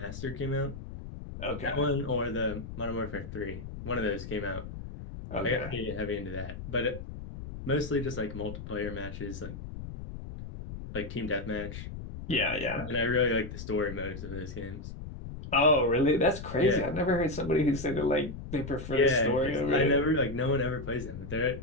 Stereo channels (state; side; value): noise; left; rumble, 10 dB below the sound